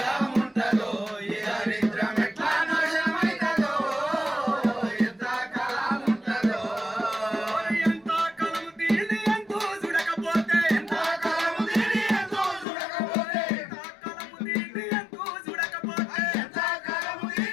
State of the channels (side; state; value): right; drops out; at 12.7 s